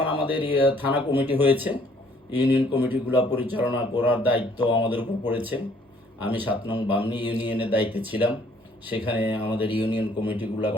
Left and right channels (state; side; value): normal; both; correlation 0.61